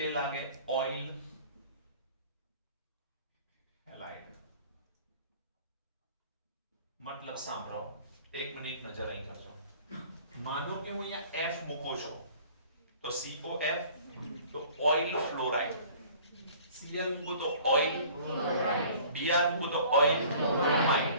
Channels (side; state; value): both; inverted; correlation -0.49